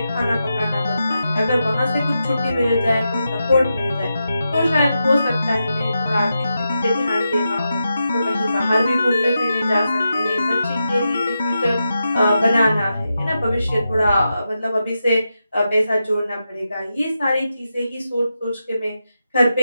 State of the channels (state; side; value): inverted; both; correlation -0.88